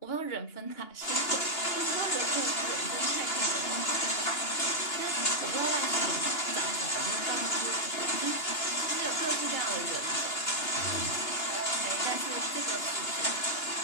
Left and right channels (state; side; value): late; right; 2.8 ms